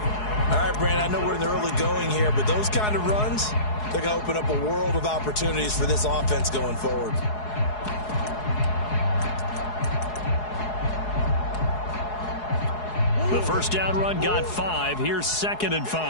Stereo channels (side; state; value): right; late; 4.7 ms